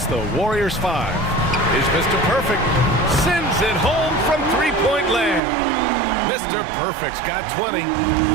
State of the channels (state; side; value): drops out; left; at 5.4 s